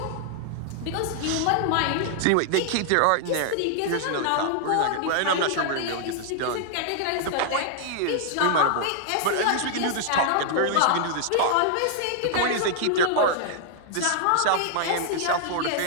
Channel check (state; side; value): different; both; correlation -0.01